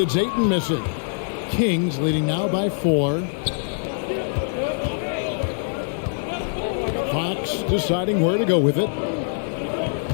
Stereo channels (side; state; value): right; silent; digital silence